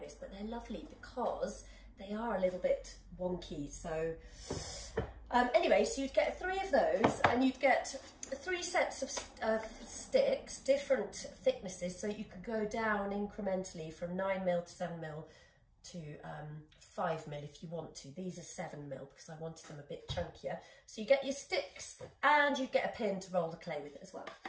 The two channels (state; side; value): identical; both; correlation 1.00